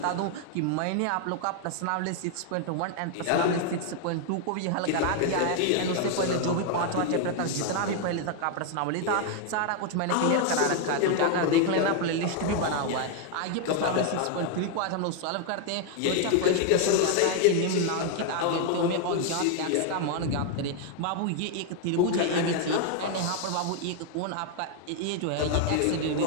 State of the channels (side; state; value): both; different; correlation 0.00